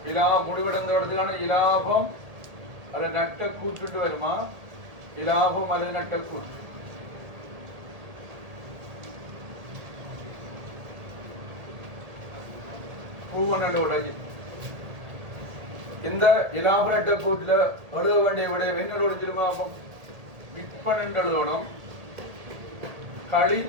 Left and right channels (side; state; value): left; late; 1.8 ms